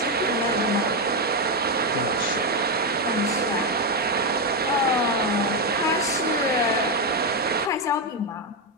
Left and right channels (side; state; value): both; normal; correlation 0.06